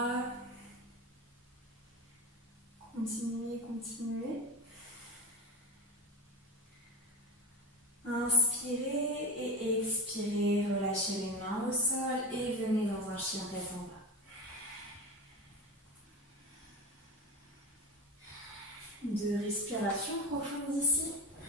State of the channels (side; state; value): both; normal; correlation 0.26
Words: Continuez, continuez. Inspirez et expirez. Relâchez les mains au sol et venez dans un chien tête en bas. 2 respirations profondes ici.